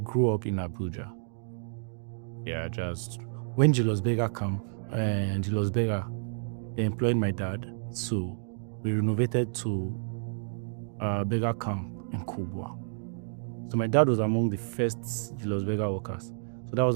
up in Abuja. Yeah, just when Julius Berger camp and Julius Berger, they employed my dad, so we renovated to Berger camp in Kubwa. So my dad was among the first Julius Berger workers. So that was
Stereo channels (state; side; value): silent; left; digital silence